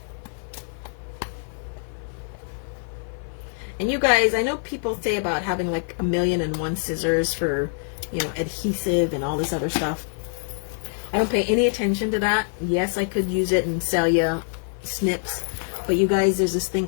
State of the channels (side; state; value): right; silent; 56 dB below the other